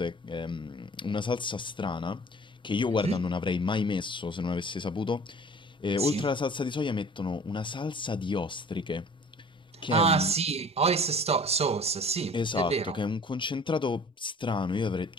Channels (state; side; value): normal; both; correlation 0.47